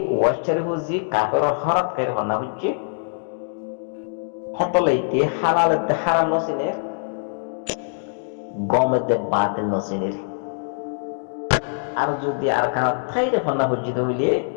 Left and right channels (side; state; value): right; silent; digital silence